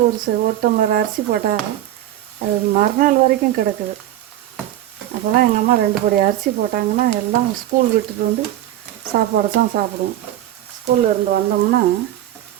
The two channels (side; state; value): left; quieter; 13.1 dB